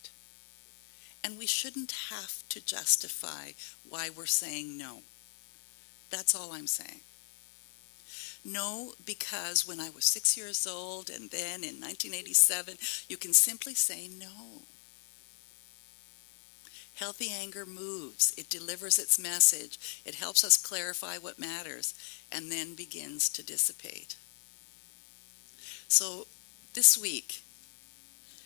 And we shouldn't have to justify why we're saying no. That's all I'm saying. No, because when I was 6 years old and then in 1987, you can simply say no. Healthy anger moves. It delivers its message. It helps us clarify what matters and then begins to dissipate. So this week,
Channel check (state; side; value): silent; right; 55 dB below the other